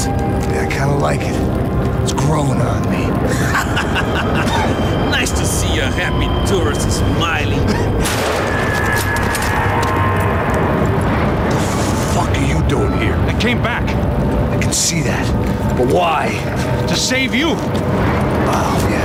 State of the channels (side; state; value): both; identical; correlation 1.00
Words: Yeah, I kind of like it. It's growing on me. Nice to see a happy tourist smiling. What the fuck are you doing here? I came back I can see that. But why? to save you. Oh,